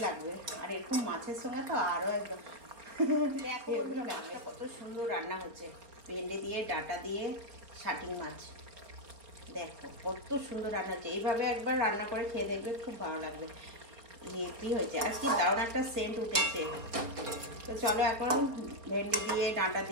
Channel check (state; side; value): late; left; 4.3 ms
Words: লাগবে। আর এরকম মাছের সঙ্গে তো আরো একদম দেখো মাছটা কত সুন্দর রান্না হচ্ছে। ভেন্ডি দিয়ে ডাঁটা দিয়ে শাটিং মাছ, দেখো কত সুন্দর রান্না হচ্ছে। এইভাবে একবার রান্না করে খেয়ে দেখবে, খুব ভালো লাগবে। কি হয়েছে আর কি দারুণ একটা সেন্ট উঠেছে। তো চলো এখন ভেন্ডি দিয়ে ডাঁটা